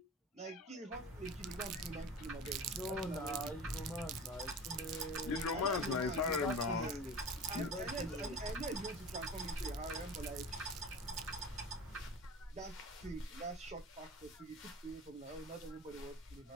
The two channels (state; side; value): normal; both; correlation 0.35